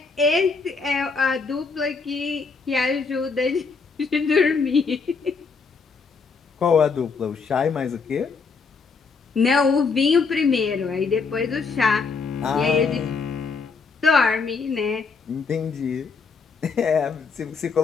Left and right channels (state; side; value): quieter; right; 4.9 dB